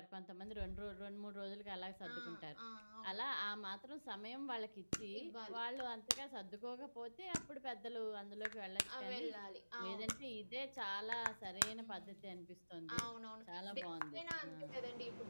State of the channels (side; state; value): both; inverted; correlation -1.00